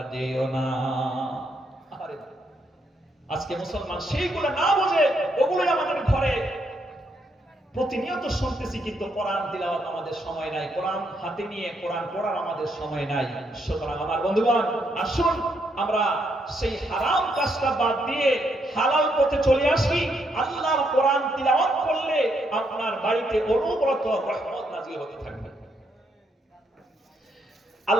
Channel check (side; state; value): both; normal; correlation 0.76